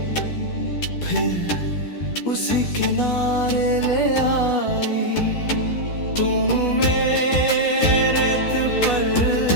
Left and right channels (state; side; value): late; right; 12 ms